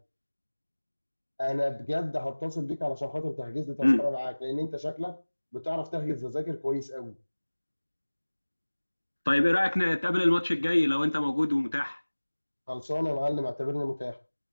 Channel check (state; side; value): inverted; both; correlation -1.00